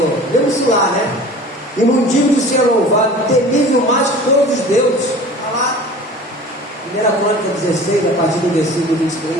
Vemos lá, né? E não digo de ser louvado, temível mais que todos os deuses. Está lá, 1 Crônica 16, a partir do versículo 23.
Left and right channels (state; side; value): normal; both; correlation 0.41